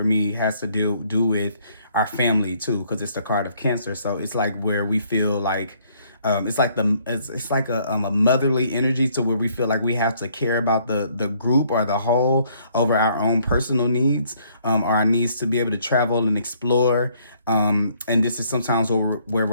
me has to do with our family too, because it's the card of Cancer. So it's like where we feel like it's like a motherly energy to where we feel like we have to care about the group or the whole over our own personal needs, or our needs to be able to travel and explore. And this is sometimes where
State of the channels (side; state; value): both; inverted; correlation -0.65